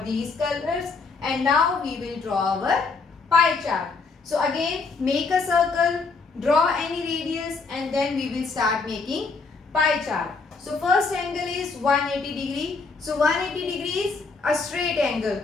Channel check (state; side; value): quieter; right; 4.4 dB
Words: these colors, and now we will draw our pie chart. So again, make a circle, draw any radius, and then we will start making pie chart. So first angle is 180 degree. So 180 degree is a straight angle.